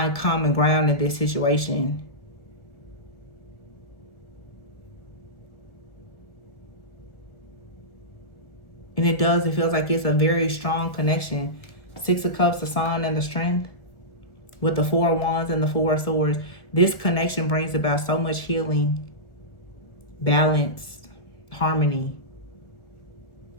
common ground in this situation. And it does. It feels like it's a very strong connection. 6 of Cups, the Sun, and the Strength, with the 4 of Wands and the 4 of Swords. This connection brings about so much healing, balance, harmony.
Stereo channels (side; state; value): right; late; 1.6 ms